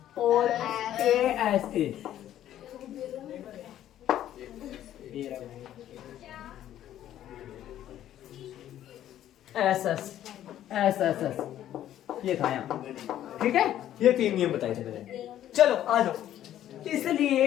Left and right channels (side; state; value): right; quieter; 11.9 dB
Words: और ए एस ये था यहाँ, ठीक है। ये 3 नियम बताए थे मैंने। चलो आ जाओ,